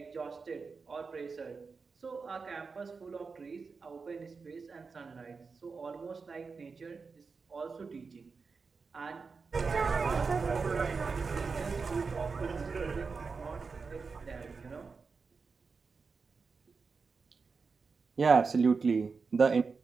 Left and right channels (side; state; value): left; quieter; 4.8 dB